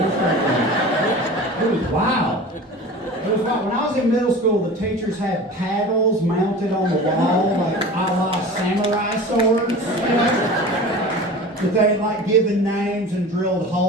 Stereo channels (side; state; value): both; normal; correlation 0.36